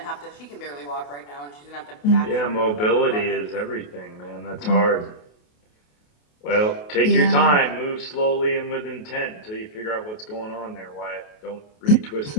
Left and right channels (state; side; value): late; right; 28 ms